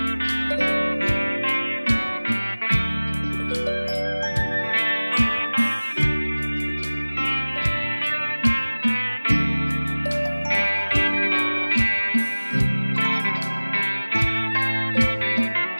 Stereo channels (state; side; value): inverted; both; correlation -1.00